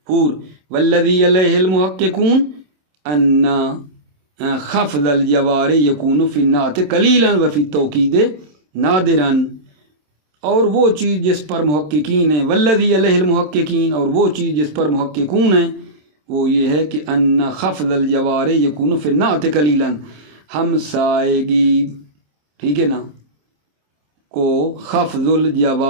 والذی علیہ المحققون ان خفض الجوار یکون فی النعت قلیلا و فی التوکید نادرا، اور وہ چیز جس پر محققین ہیں، والذی علیہ المحققین، اور وہ چیز جس پر محققون ہیں وہ یہ ہے کہ ان خفض الجوار یکون فی النعت قلیلا، ہمسائیگی، ٹھیک ہے نا، کو خفض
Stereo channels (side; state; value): left; late; 27 ms